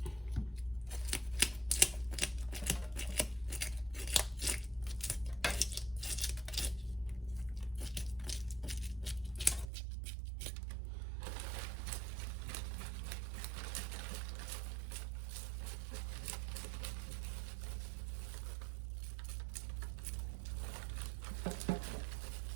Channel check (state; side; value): drops out; left; at 9.7 s